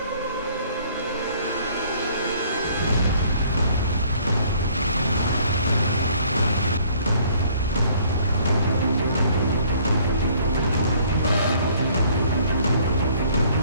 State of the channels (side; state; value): both; inverted; correlation -0.59